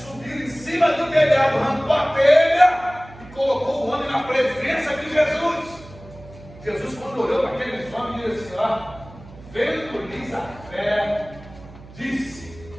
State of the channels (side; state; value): right; noise; hum, 19 dB below the sound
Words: em cima do telhado, arrancou a telha e colocou o homem na presença de Jesus. Jesus, quando olhou para aqueles homens, disse assim: ó, vendo-lhes a fé, disse